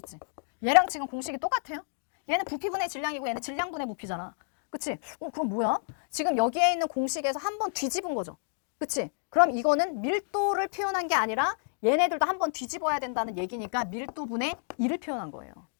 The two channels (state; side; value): silent; right; digital silence